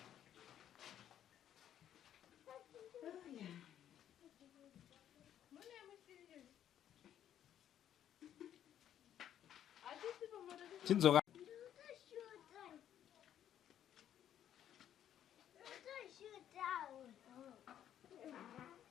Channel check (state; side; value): quieter; right; 10.5 dB